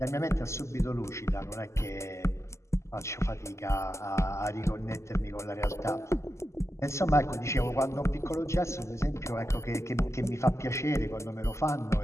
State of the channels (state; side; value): late; right; 0.13 ms